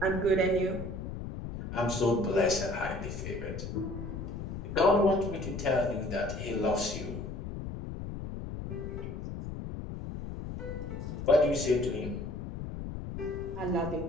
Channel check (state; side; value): noise; left; rumble, 7 dB below the sound